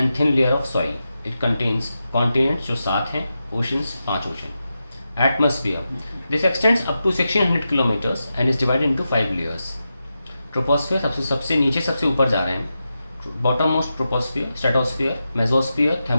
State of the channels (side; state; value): both; inverted; correlation -0.89